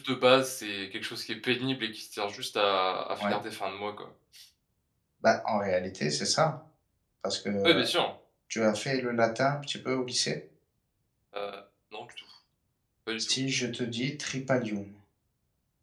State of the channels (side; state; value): both; identical; correlation 1.00